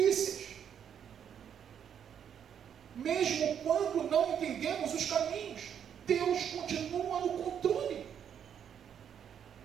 Mesmo quando não entendemos os caminhos, Deus continua no controle.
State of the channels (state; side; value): quieter; left; 8.5 dB